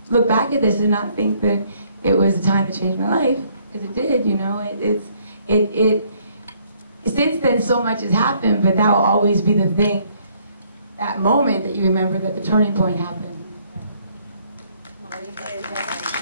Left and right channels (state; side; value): inverted; both; correlation -0.65